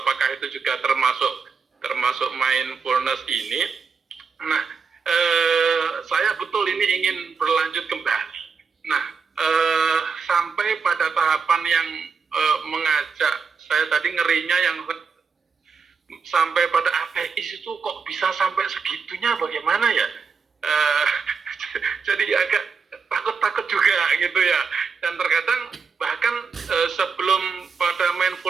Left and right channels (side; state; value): left; quieter; 5.5 dB